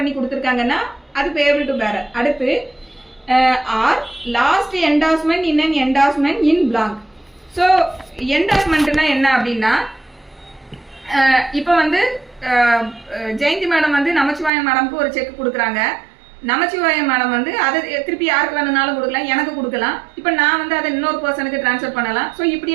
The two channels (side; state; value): left; drops out; at 14.5 s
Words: கொடுத்துருக்காங்கன்னா அது பேபிள் டு பேரர். அடுத்து or last endorsement in an endorsement in blank. So என்டார்ஸ்மெண்ட்னா என்ன அப்படின்னா இப்போ வந்து ஜெயந்தி மேடம் வந்து நமச்சிவாயம் மேடம்க்கு ஒரு செக் கொடுக்குறாங்க. நமச்சிவாயம் மேடம் வந்து அதை திருப்பி யாருக்கு வேணும்னாலும் கொடுக்கலாம், எனக்கு கொடுக்கலாம். இப்போ நான் வந்து அதை இன்னொரு பர்சனுக்கு டிரான்ஸ்ஃபர் பண்ணலாம். ஸோ